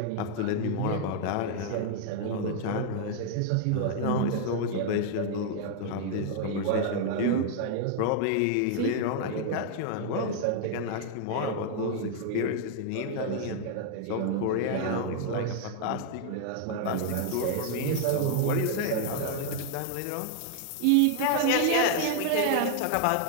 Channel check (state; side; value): different; both; correlation 0.00